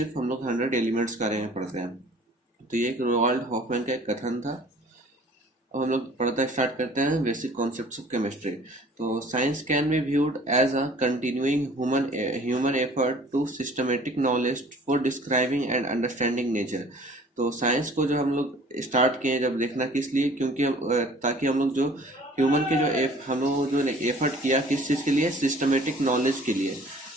हम लोग 100 एलिमेंट्स के बारे में पढ़ते हैं। तो ये एक रोनाल्ड हॉफमैन का एक कथन था। अब हम लोग पढ़ना स्टार्ट करते हैं बेसिक कॉन्सेप्ट्स ऑफ केमिस्ट्री। तो science can be viewed as a continuing human effort to systematic knowledge for describing and understanding nature. तो साइंस को जो हम लोग स्टार्ट किए जब देखना किस लिए, क्योंकि ताकि हम लोग जो ह्यूमन के जो हम लोग जो एफर्ट किया किस चीज़ के लिए, सिस्टमेटिक नॉलेज के लिए,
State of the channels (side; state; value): both; normal; correlation 0.51